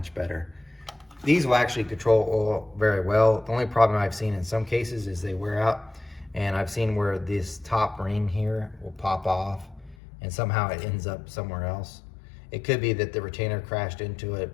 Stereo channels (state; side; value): drops out; right; at 10.0 s